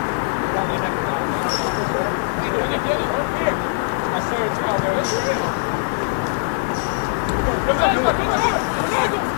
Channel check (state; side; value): silent; right; digital silence